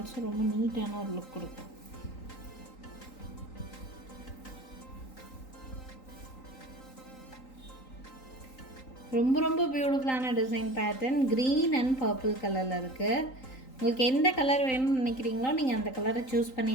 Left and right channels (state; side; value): late; right; 3.9 ms